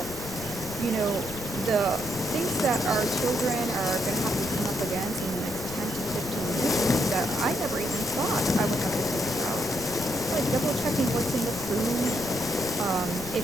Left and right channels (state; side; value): noise; right; rumble, 14 dB below the sound